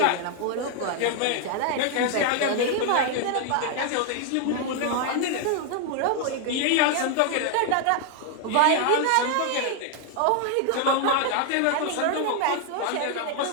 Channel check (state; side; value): different; both; correlation 0.00